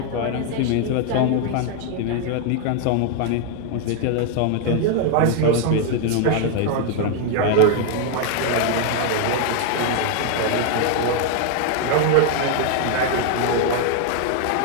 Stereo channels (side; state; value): both; different; correlation 0.00